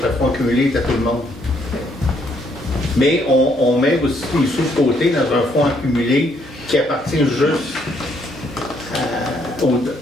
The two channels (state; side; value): normal; both; correlation 0.70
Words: que le fonds cumulé est à tout le monde. Mais on met aussi les sous de côté dans un fonds accumulé qui appartient juste